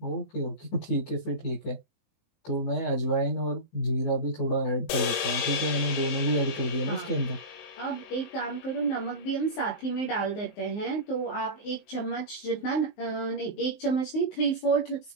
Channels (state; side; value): late; right; 19 ms